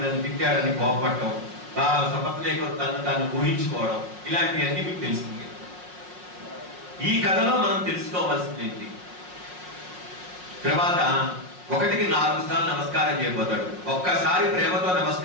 నన్ను తిట్టాడని కోపపడటం, సపత్నేకర్ తను ఊహించుకోవడం, ఇలాంటివన్నీ మీకు తెలిసింది. ఈ కథలో మనం తెలుసుకోవాల్సింది ఏంటి, తర్వాత 1కి 4 సార్లు నమస్కారం చేయబోతాడు. ఒక్కసారి ప్రేమతో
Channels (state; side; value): late; left; 5.5 ms